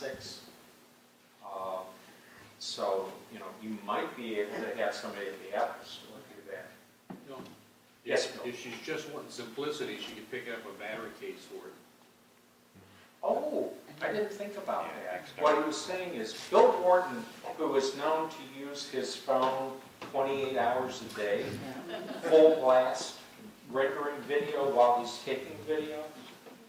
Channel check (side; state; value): both; identical; correlation 1.00